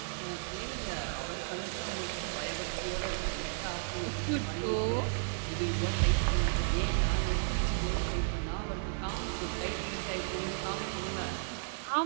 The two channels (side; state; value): left; silent; 55 dB below the other